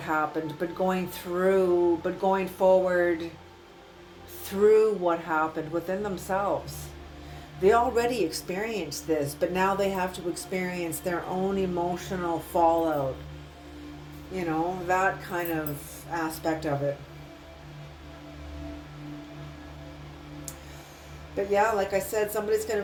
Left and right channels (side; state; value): both; identical; correlation 1.00